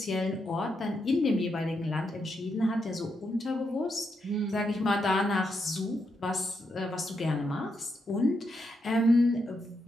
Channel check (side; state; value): both; normal; correlation 0.82